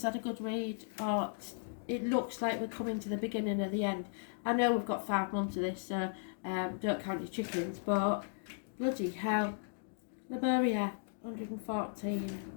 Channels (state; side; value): silent; right; digital silence